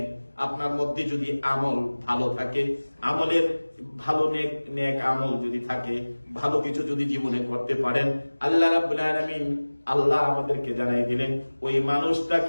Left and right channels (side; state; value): both; inverted; correlation -1.00